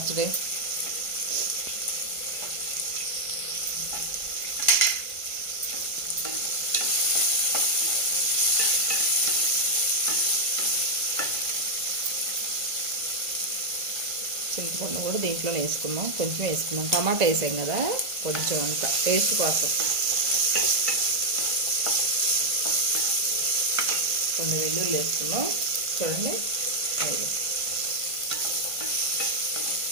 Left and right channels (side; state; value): left; late; 1.5 ms